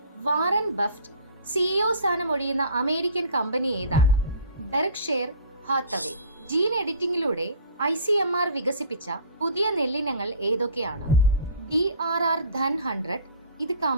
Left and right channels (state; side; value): inverted; both; correlation -0.44